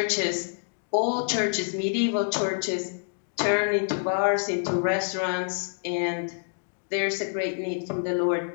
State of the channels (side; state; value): right; silent; digital silence